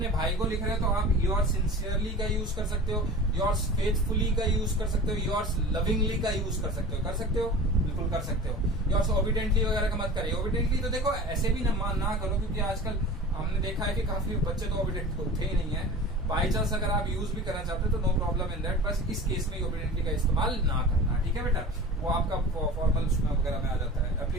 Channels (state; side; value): normal; both; correlation 0.37